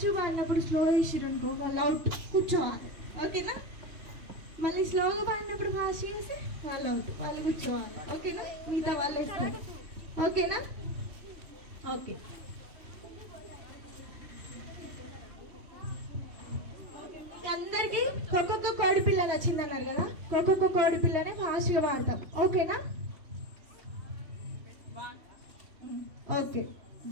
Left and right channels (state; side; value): late; left; 3.1 ms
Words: పాడినప్పుడు స్లో వేసారు అనుకో వాళ్ళు అవుట్, కూర్చోవాలి. ఓకేనా? మళ్ళీ స్లోగా పాడినప్పుడు ఫాస్ట్ చేసి వాళ్ళు అవుట్, వాళ్ళు కూర్చోవాలి. ఓకేనా? మిగతా వాళ్ళు వేస్తారు. ఓకేనా? ఓకే. అందరికి ఒక్కొక్క కోడి పిల్ల నచ్చిందన్నారు కదా, ఒక్కొక్క కోడి పిల్లనే ఫాస్ట్గా పాడతాం. ఓకేనా? Okay,